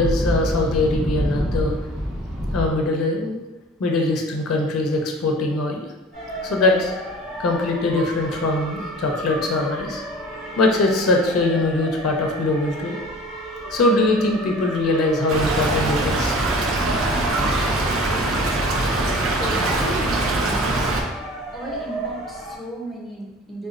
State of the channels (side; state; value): both; normal; correlation 0.42